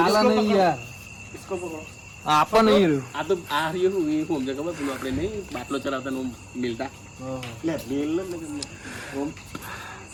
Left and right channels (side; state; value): both; identical; correlation 1.00